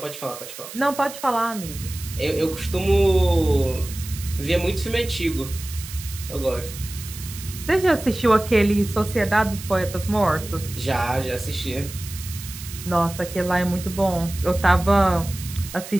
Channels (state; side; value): noise; right; hiss, 13 dB below the sound